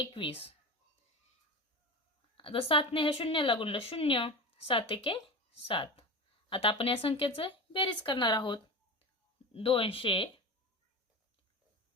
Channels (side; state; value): both; normal; correlation 0.27